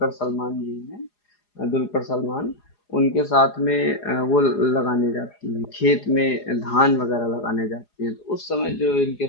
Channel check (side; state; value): right; late; 4.8 ms